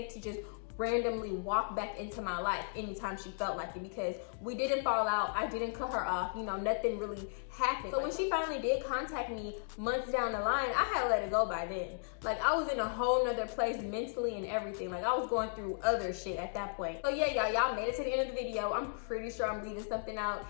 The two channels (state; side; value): silent; right; digital silence